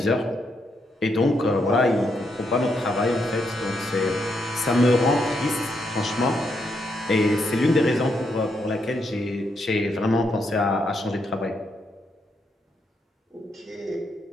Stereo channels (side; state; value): both; normal; correlation 0.79